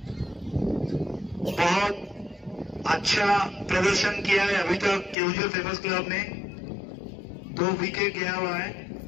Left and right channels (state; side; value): drops out; right; at 5.2 s